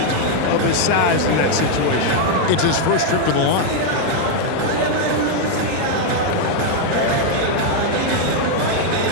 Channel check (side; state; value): both; different; correlation 0.00